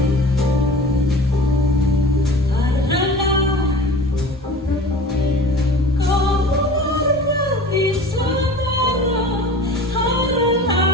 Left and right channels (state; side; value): normal; both; correlation 0.40